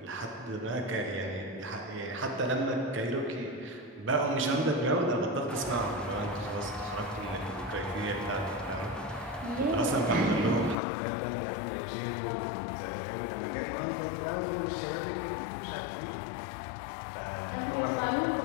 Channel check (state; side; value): drops out; right; at 10.8 s